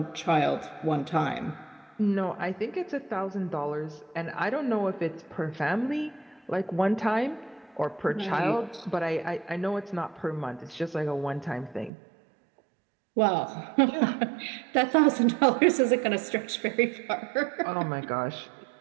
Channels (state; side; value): drops out; left; at 11.9 s